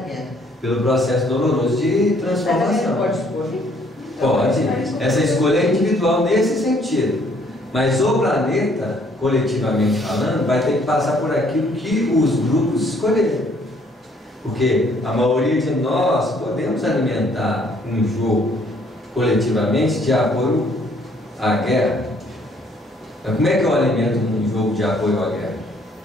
Pelo processo doloroso de transformação. Pode escolher? Pode. Essa escolha é individual nesse sentido. Mas o planeta, coletivamente falando, vai ter que passar por aquilo que os grupos escolherem. Porque a maioria de nós podemos alimentar um jogo coletivamente de apoio à guerra. Mas como é que eu alimento um jogo de apoio à guerra?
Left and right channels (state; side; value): normal; both; correlation 0.64